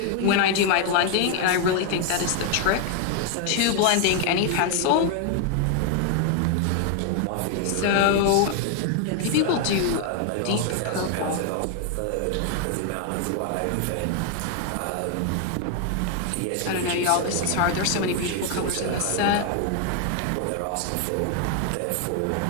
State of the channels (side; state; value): both; different; correlation 0.00